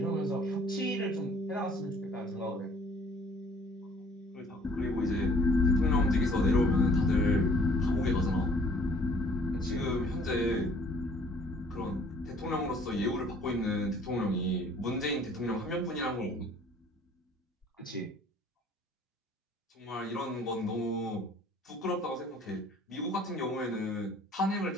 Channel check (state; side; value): normal; both; correlation 0.56